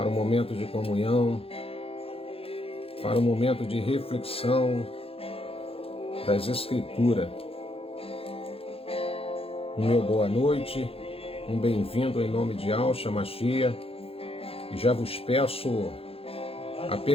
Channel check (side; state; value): right; late; 0.27 ms